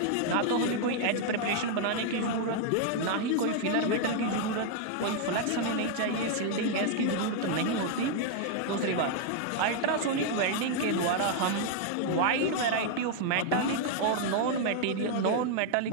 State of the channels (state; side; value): different; both; correlation 0.00